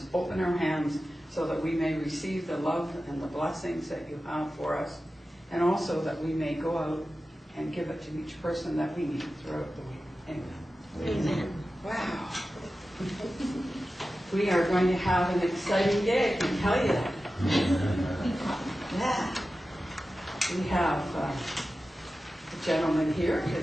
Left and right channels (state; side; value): normal; both; correlation 0.94